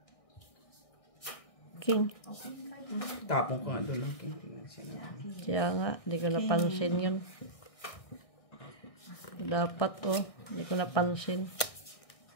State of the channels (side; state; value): right; late; 1.6 ms